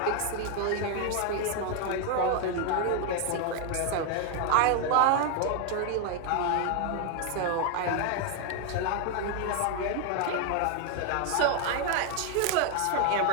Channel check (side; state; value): both; different; correlation 0.01